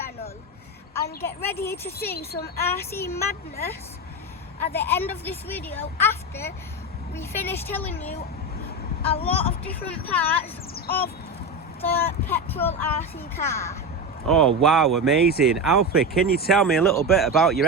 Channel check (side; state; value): both; normal; correlation 0.19